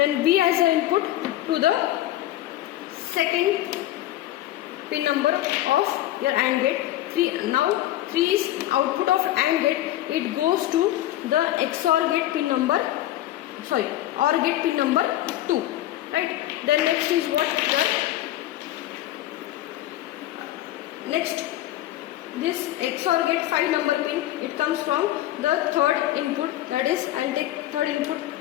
B as an input to the second pin number of your AND gate. 3 now 3 is output of AND gate. It goes to the XOR gate pin number, OR gate pin number 2, right? Then next is what? Next, this XOR gate 5 number pin, it comes from the third input. That is, I will take third input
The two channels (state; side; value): quieter; right; 14.4 dB